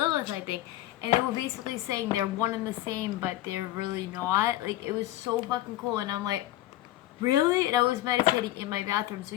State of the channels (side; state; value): right; quieter; 15.5 dB